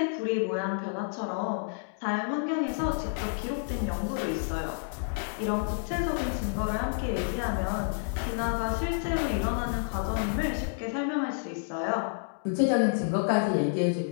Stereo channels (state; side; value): silent; right; digital silence